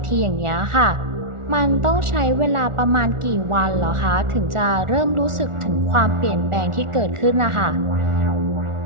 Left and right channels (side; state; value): left; late; 1.4 ms